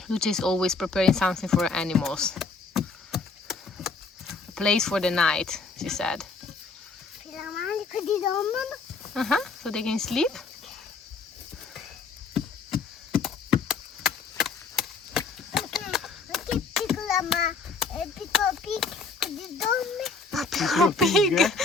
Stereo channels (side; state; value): right; quieter; 4.4 dB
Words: Luce is always preparing something for animals. A place for the night, she said. Per la mali così dormono. Uh-huh. So they can sleep. Perché piccola piccolo pig così dorme. Piccolo pig.